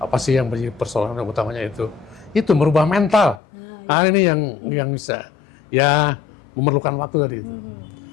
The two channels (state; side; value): drops out; right; at 3.4 s